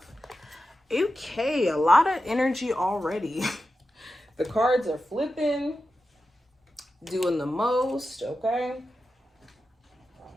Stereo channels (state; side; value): normal; both; correlation 0.91